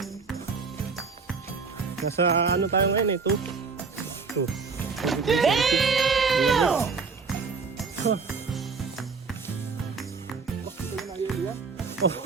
Nasa ano tayo ngayon eh? 2. Damn!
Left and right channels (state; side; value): quieter; left; 4.9 dB